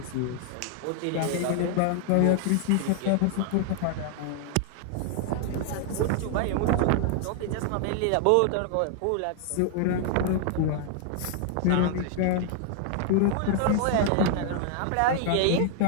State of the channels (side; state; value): both; different; correlation 0.00